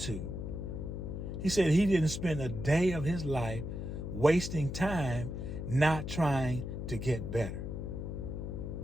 He said he didn't spend a day of his life wasting time not trying to get better.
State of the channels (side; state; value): left; noise; hum, 5 dB below the sound